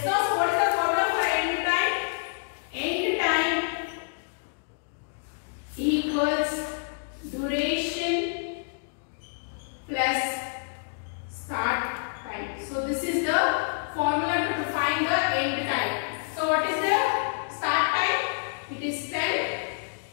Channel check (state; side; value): silent; right; digital silence